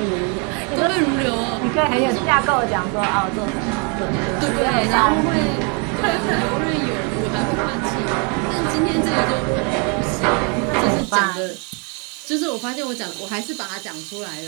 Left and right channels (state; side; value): quieter; left; 35.5 dB